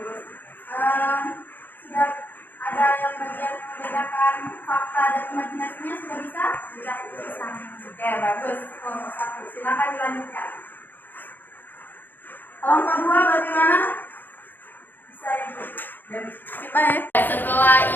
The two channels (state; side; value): late; right; 0.090 ms